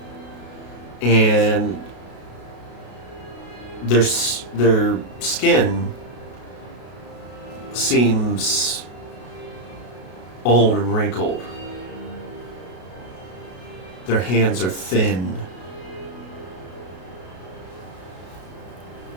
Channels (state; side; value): late; right; 33 ms